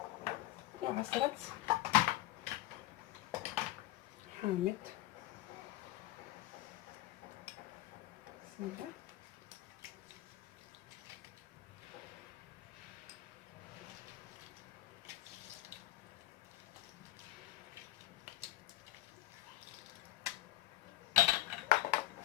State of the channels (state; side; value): quieter; right; 16.5 dB